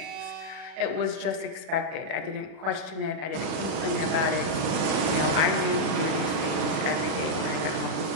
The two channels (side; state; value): left; late; 38 ms